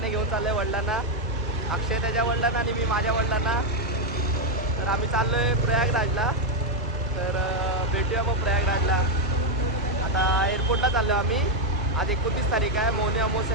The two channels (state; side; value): normal; both; correlation 0.02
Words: घेऊन चाललो आहे वडिलांना. अक्षय त्याच्या वडिलांना आणि मी माझ्या वडिलांना. तर आम्ही चाललो आहे प्रयागराजला. तर भेटूया मग प्रयागराजला. आता एअरपोर्टला चाललो आम्ही. आज 29 तारीख आहे, मौनी